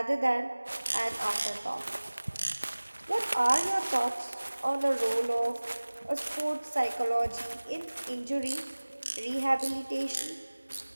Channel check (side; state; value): both; inverted; correlation -1.00